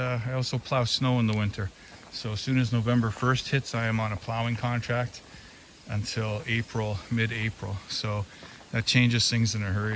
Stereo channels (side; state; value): both; identical; correlation 1.00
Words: also plow snow in the winter. So as soon as November 1st hits, I am on a plowing contract until April, mid-April. So that changes things in a